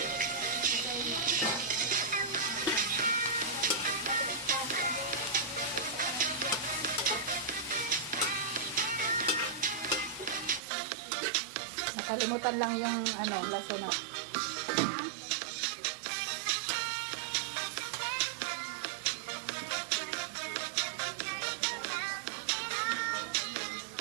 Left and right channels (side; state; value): left; drops out; at 10.6 s